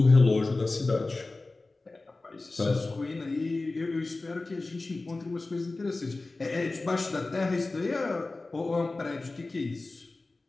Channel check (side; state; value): right; quieter; 3.3 dB